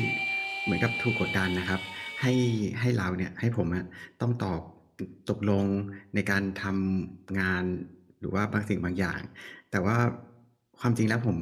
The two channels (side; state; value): both; identical; correlation 1.00